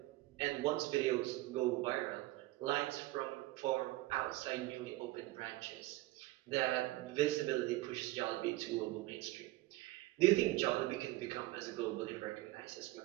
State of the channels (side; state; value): left; quieter; 18.2 dB